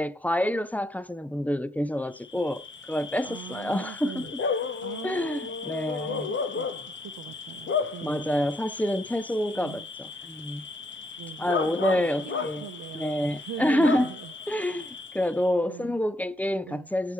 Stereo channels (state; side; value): normal; both; correlation 0.75